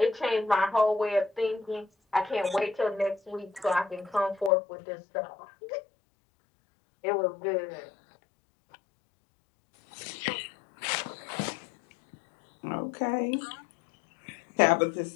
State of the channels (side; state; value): right; drops out; at 4.5 s